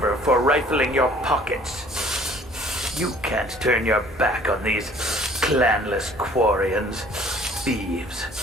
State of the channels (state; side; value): normal; both; correlation 0.54